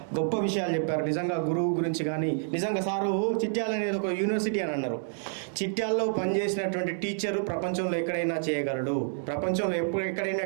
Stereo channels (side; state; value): left; silent; 59 dB below the other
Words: గొప్ప విషయాలు చెప్పారు నిజంగా గురువు గురించి. కానీ నిజంగా సారు చిట్యాల అనేది ఒక యూనివర్సిటీ అని అన్నారు. చిట్యాల్లో పనిచేసినటువంటి టీచరు ప్రపంచంలో ఎక్కడైనా చేయగలడు, ప్రపంచంలో